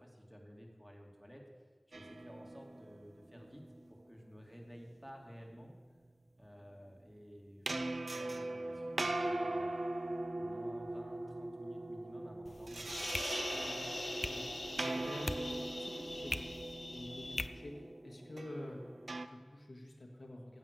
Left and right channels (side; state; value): both; normal; correlation 0.97